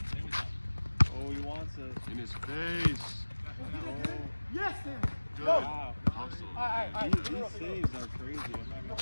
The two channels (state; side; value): inverted; both; correlation -1.00